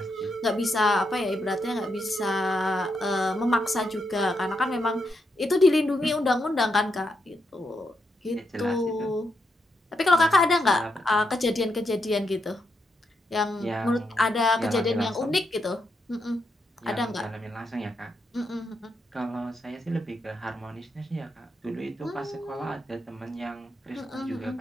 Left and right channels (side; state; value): both; normal; correlation 0.82